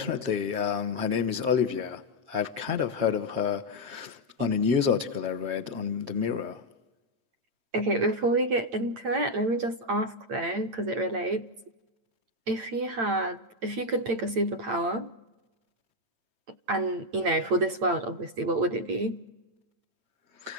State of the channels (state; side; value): late; left; 8.8 ms